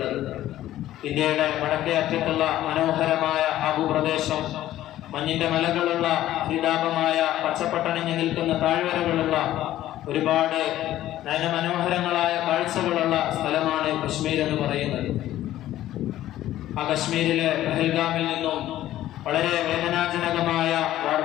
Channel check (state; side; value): quieter; right; 13.7 dB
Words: ഇന്ത്യയുടെ വടക്കേ അറ്റത്തുള്ള മനോഹരമായ ആ ഭൂപ്രദേശം മഞ്ഞിന്റെ മലകളുള്ള ഹരിതാപമായ പച്ചപ്പട്ടണിഞ്ഞു നിൽക്കുന്ന താഴ്വരകളുള്ള ഒരുപാട് നയനമനോഹരങ്ങളായ കാഴ്ചകളുള്ള സ്ഥലമാണ് കശ്മീർ എന്ന് പറയുന്നത്. ആ കശ്മീരിലെ പഹൽഗാമിൽ നിന്നും വളരെ വേദനാജനകമായ